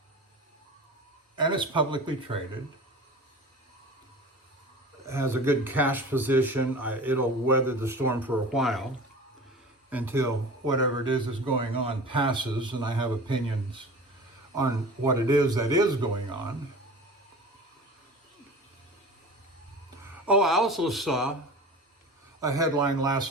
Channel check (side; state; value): both; normal; correlation 0.37